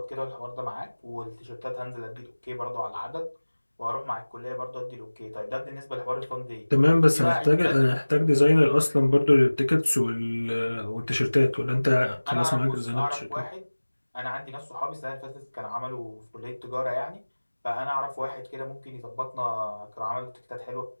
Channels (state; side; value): inverted; both; correlation -1.00